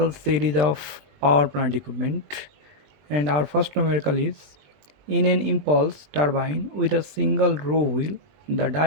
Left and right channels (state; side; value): late; left; 20 ms